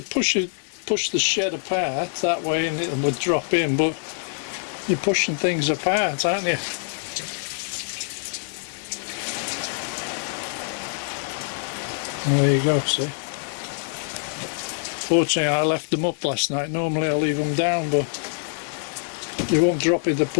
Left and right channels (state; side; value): silent; right; digital silence